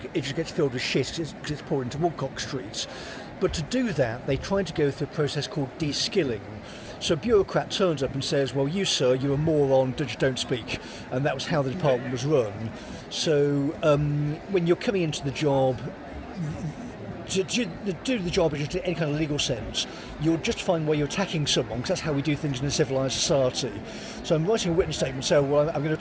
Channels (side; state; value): both; identical; correlation 1.00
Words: it just gets filled with shit because it's poured into Woodcock Street. But to do that, they tried to go through a process called de-skilling. So a bureaucrat turns up and says, well, you, sir, you're a moron, just don't speak. And that was how the department was run. So when you're coming into the job, to do the job in just any kind of legal sense, you're justifying why you're attacking someone, because that's how we do things in a civilised society. So I'm writing a witness statement saying, well, I'm going to